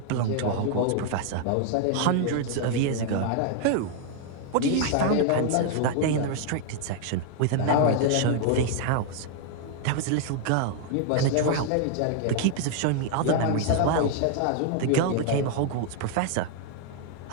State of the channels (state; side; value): different; both; correlation 0.00